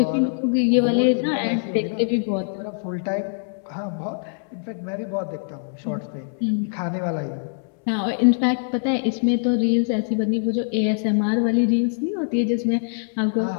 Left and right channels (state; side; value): silent; right; 63 dB below the other